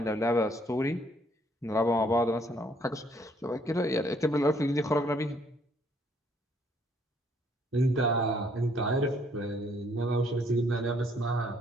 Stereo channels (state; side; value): normal; both; correlation 0.66